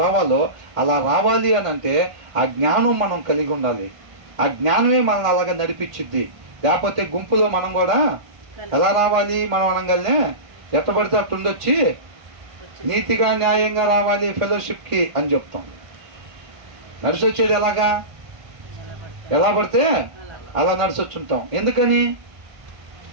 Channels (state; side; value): late; left; 1.5 ms